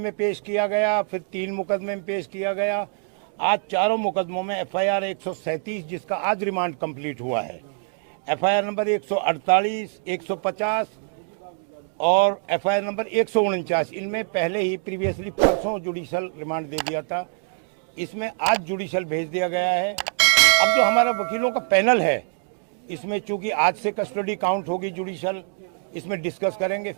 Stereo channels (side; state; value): left; silent; digital silence